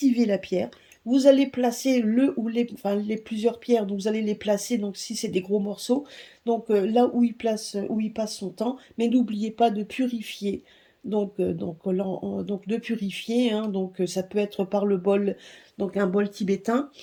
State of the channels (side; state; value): both; identical; correlation 1.00